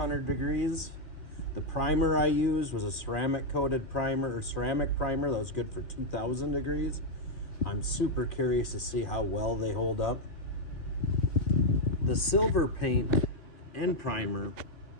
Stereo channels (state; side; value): late; right; 2.9 ms